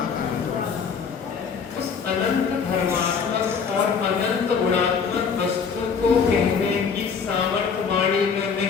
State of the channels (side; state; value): right; quieter; 6.1 dB